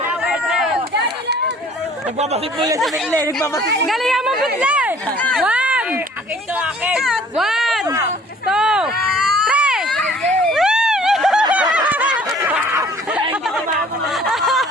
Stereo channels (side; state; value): both; normal; correlation 0.53